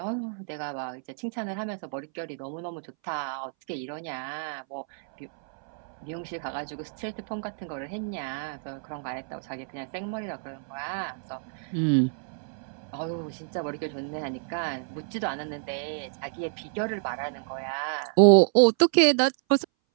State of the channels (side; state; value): left; silent; 59 dB below the other